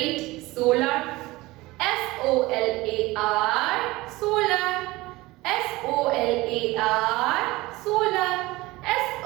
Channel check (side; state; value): left; quieter; 20.3 dB